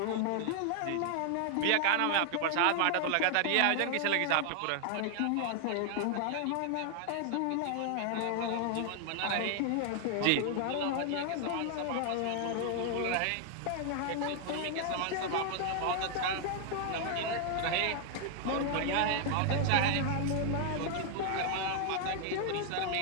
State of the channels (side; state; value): both; different; correlation 0.00